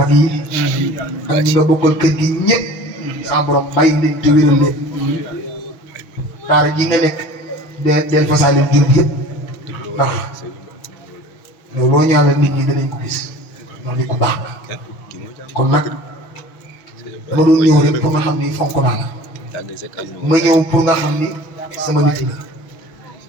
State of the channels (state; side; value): late; right; 6.2 ms